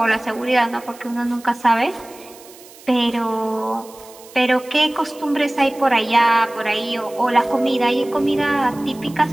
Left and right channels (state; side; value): noise; right; hiss, 22 dB below the sound